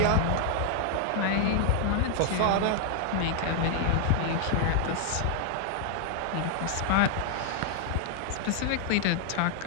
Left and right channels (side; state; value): both; different; correlation 0.00